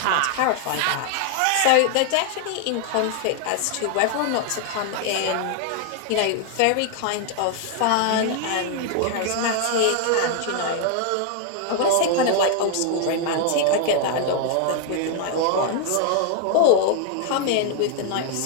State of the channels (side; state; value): both; different; correlation 0.00